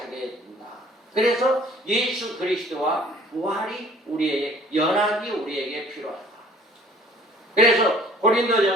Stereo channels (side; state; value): both; normal; correlation 0.53